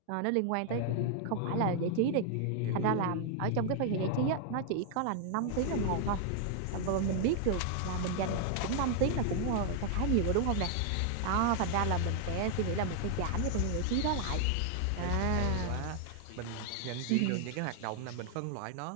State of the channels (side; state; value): both; different; correlation 0.00